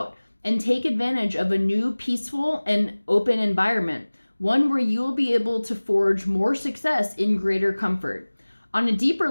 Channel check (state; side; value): inverted; both; correlation -1.00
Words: and take advantage of a new, peaceful, and open environment, one where you will be able to forge more success in greater comfort. On a deeper